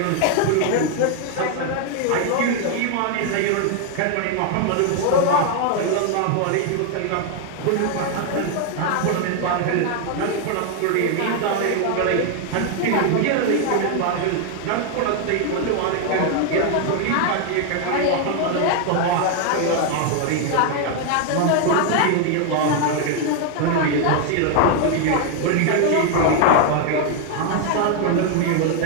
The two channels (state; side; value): different; both; correlation 0.00